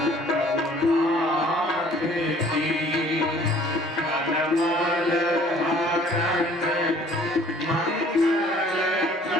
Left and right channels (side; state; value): both; normal; correlation 0.54